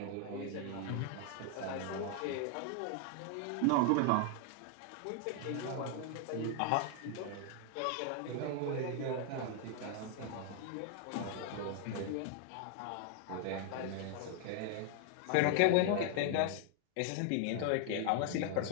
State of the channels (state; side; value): different; both; correlation 0.00